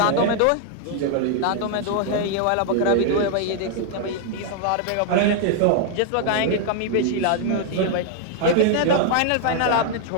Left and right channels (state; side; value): different; both; correlation 0.00